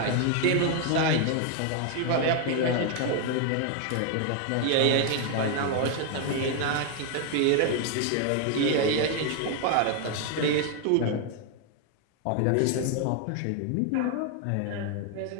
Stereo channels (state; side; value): different; both; correlation 0.00